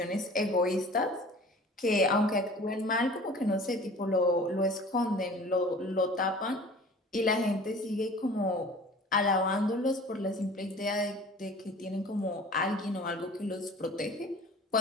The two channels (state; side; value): normal; both; correlation 0.44